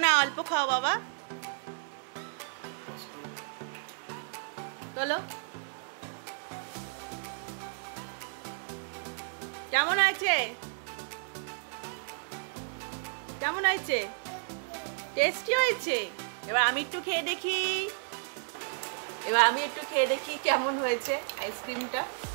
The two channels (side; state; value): left; silent; digital silence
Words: না, অল্প খাও বাবা। চলো, কেমন আছে? কেমন হয়েছে? টেস্টি হয়েছে? এবার আমি একটু খেয়ে দেখি, কেমন হয়েছে আইসক্রিমটা।